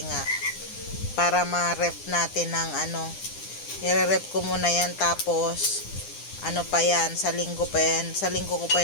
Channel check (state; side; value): late; right; 9.9 ms